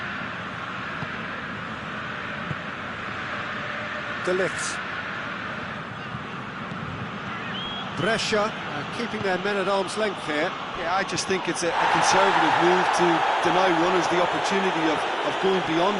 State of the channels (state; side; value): identical; both; correlation 1.00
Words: De Ligt. Brescia keeping their men at arm's length here. Yeah, I just think it's a conservative move to deny runners the opportunity of going